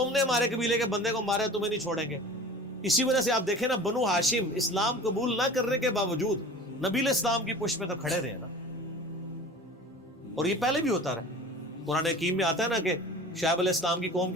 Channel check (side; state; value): both; normal; correlation 0.39